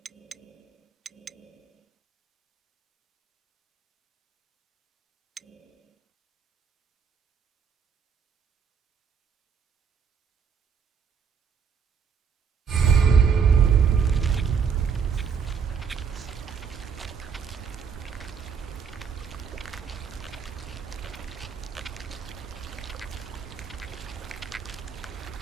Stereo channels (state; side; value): quieter; left; 6.5 dB